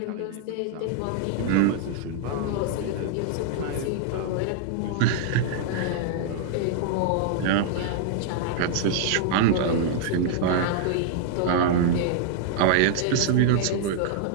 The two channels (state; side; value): different; both; correlation -0.01